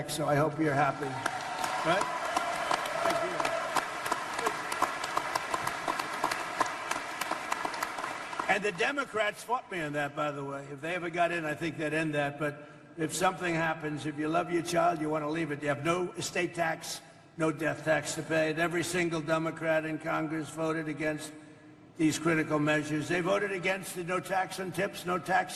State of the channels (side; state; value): both; identical; correlation 1.00